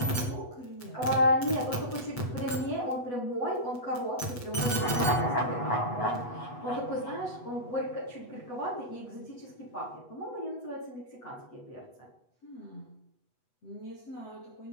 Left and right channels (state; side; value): late; right; 8.1 ms